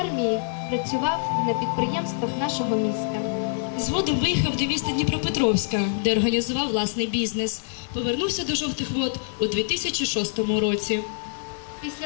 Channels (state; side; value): silent; right; 62 dB below the other